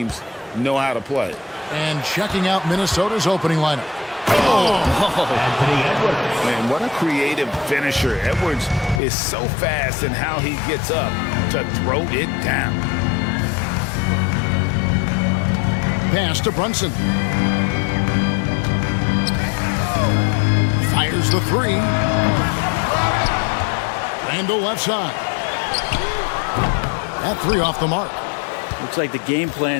know how to play. And checking out Minnesota's opening lineup. Anthony Edwards. Man, what a creative finisher. Edwards is so fast in how he gets up to throw it down. Pass to Brunson. Fires the three. Randall left side. That three off the mark. Looks like the game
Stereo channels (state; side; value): drops out; right; at 9.0 s